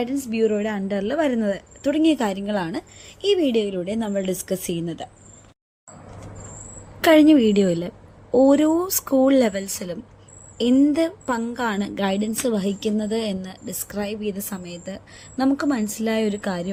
ബ്യൂറോയുടെ അണ്ടറിൽ വരുന്നത് തുടങ്ങിയ കാര്യങ്ങളാണ് ഈ വീഡിയോയിലൂടെ നമ്മൾ ഡിസ്കസ് ചെയ്യുന്നത്. കഴിഞ്ഞ വീഡിയോയിൽ ഓരോ സ്കൂൾ ലെവൽസിലും എന്ത് പങ്കാണ് ഗൈഡൻസ് വഹിക്കുന്നത് എന്ന് ഡിസ്ക്രൈബ് ചെയ്ത സമയത്ത് നമുക്ക് മനസ്സിലായ ഒരു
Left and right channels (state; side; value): identical; both; correlation 1.00